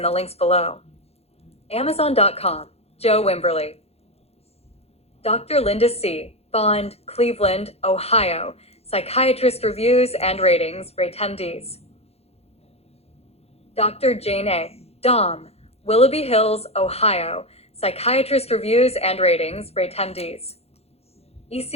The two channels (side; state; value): right; late; 0.30 ms